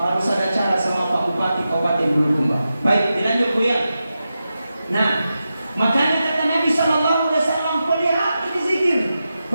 ada cara sama Pak Bupati Kabupaten Bulukumba. Baik, dilanjut Bu ya. Nah, makanya kata Nabi Sallallahu Alaihi Wasallam, pelihara ini zikir.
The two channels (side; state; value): both; inverted; correlation -0.90